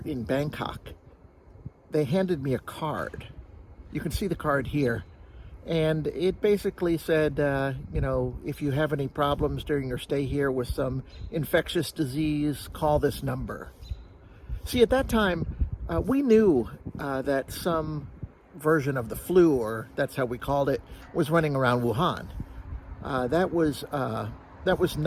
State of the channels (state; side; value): identical; both; correlation 1.00